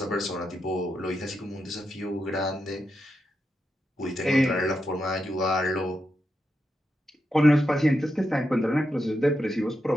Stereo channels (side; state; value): both; normal; correlation 0.86